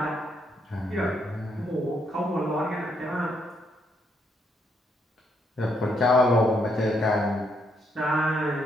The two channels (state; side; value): normal; both; correlation 0.75